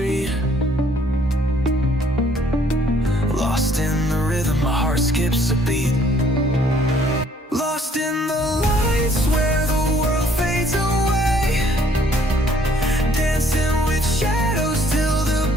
Lost in the rhythm, my heart skips a beat. Lost in the lights where the world fades away. Dancing with shadows till the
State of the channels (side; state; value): both; normal; correlation 0.62